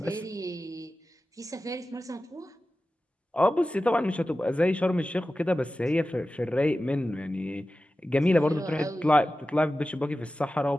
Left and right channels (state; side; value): normal; both; correlation 0.94